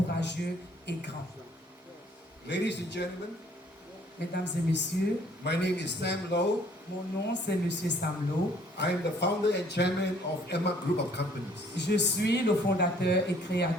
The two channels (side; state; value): both; normal; correlation 0.60